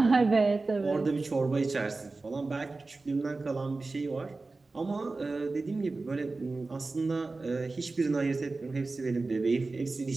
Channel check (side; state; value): left; quieter; 3.6 dB